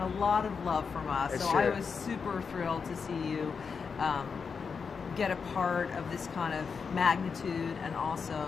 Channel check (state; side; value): quieter; right; 5.7 dB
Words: a lot of love from us. It's so true. I was super thrilled to see you get a part of this kind of magnitude, and